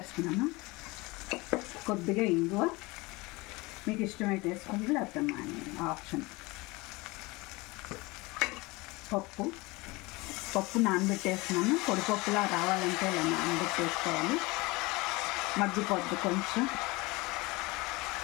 కొద్దిగా ఇంగువ, మీకు ఇష్టమైతే వేసుకోండి, లేకపోతే మానేయండి, ఆప్షన్. పప్పు నానబెట్టేస్తున్నాను. పొడిపప్పులా రావాలంటే ఇలా నానబెట్టేసుకోవాలి. మగ్గిపోద్ది కొంచెం.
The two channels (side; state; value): right; quieter; 23.6 dB